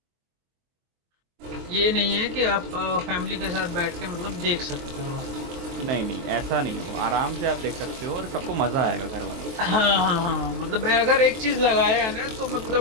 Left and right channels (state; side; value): late; left; 23 ms